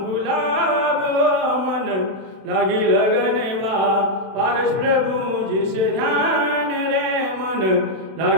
गुलाब मन लगी लगनवा, पारस प्रभु जिसे ध्यान रे मन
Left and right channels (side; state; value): left; late; 32 ms